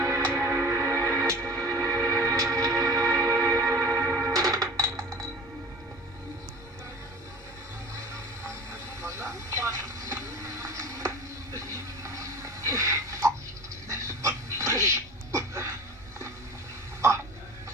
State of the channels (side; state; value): both; normal; correlation 0.39